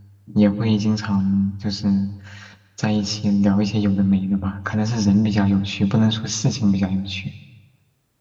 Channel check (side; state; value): both; identical; correlation 1.00